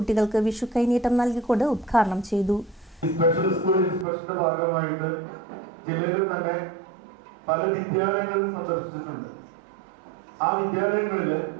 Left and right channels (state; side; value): drops out; left; at 4.0 s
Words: വിഷു കൈനീട്ടം നൽകിക്കൊണ്ട് ഉദ്ഘാടനം ചെയ്തു. സ്പെഷ്യൽ സ്കൂൾ ഇൻസ്പെക്ഷന്റെ ഭാഗമായിട്ട് ജില്ലയിൽ തന്നെ പല വിദ്യാലയങ്ങളും സന്ദർശിച്ചിട്ടുണ്ട്. ആ വിദ്യാലയങ്ങളിൽ